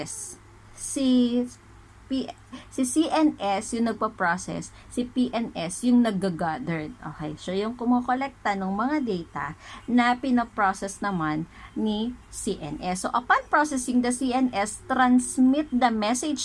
Si CNS yung nagpa-process, si PNS yung nag-gathered. Okay, so yung kumukolekta ng mga data na pinaprocess naman ni CNS. So upon processing, the CNS transmit the message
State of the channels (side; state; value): both; identical; correlation 1.00